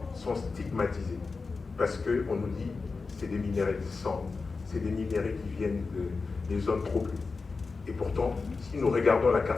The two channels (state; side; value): quieter; right; 4.3 dB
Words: sont stigmatisés parce qu'on nous dit que c'est des minerais sans, c'est des minerais qui viennent des zones troublées. Et pourtant, si nous regardons la